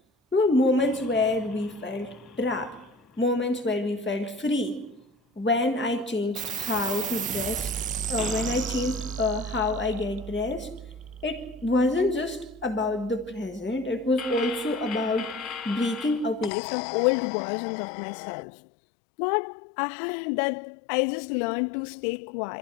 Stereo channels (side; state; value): right; drops out; at 16.5 s